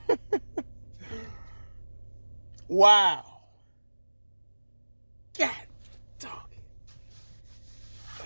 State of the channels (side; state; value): both; inverted; correlation -1.00